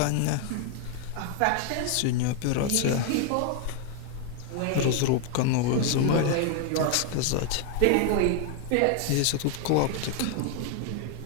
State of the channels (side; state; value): both; different; correlation 0.00